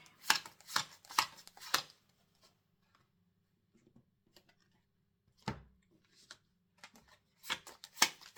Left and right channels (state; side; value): identical; both; correlation 1.00